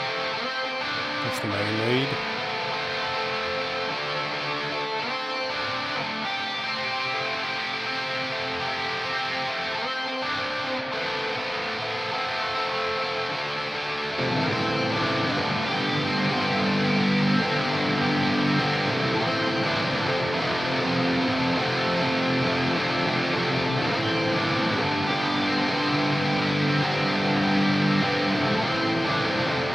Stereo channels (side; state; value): both; normal; correlation 0.96